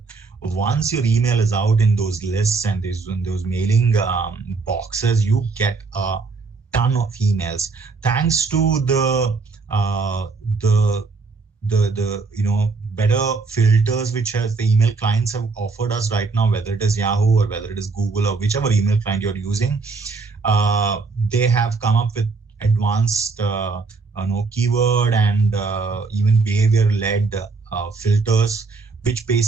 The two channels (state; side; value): quieter; left; 4.3 dB